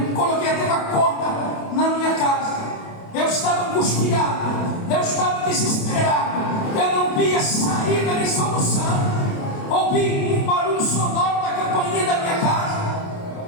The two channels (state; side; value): late; right; 28 ms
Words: coloquei até uma corda na minha casa, eu estava angustiado, eu estava desesperado, eu não via saída nem solução. Ouvi um barulho sonoro da campainha da minha casa.